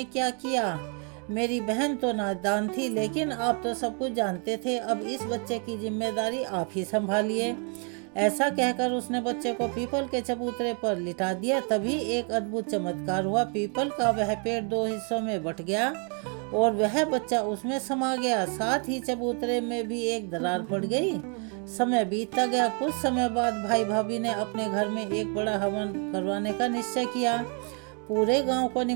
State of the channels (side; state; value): left; quieter; 38.6 dB